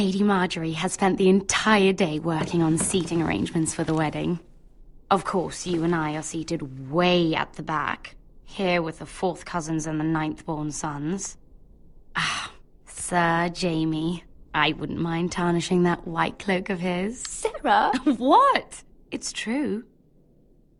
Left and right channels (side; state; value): both; identical; correlation 1.00